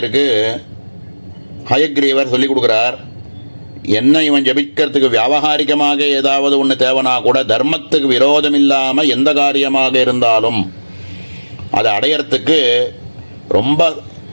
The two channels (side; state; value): both; inverted; correlation -1.00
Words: ஹயக்ரீவர் சொல்லி கொடுக்குறார். என்ன இவன் ஜபிக்கிறதுக்கு வியாபகாரிகமாக ஏதாவது ஒன்று தேவைனா கூட தர்மத்துக்கு விரோதம் இல்லாமல் எந்த காரியமாக இருந்தாலும் அதை அடையறதுக்கு ரொம்ப